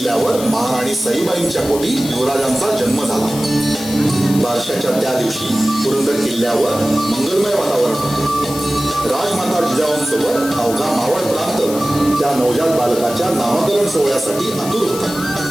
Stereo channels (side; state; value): left; noise; hiss, 11 dB below the sound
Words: महाराणी सईबाईंच्या पोटी युवराजांचा जन्म झाला. बारशाच्या त्या दिवशी पुरंदर किल्ल्यावर मंगलमय वातावरण होते. राजमाता जिजाऊंसोबत अवघा मावळ प्रांत त्या नवजात बालकाच्या नामकरण सोहळ्यासाठी आतुर होता.